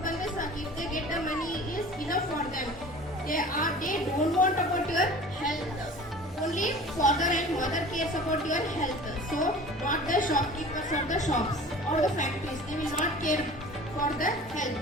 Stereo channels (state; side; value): normal; both; correlation 0.42